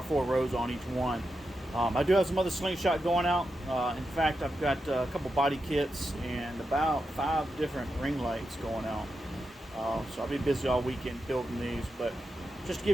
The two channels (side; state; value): both; normal; correlation 0.88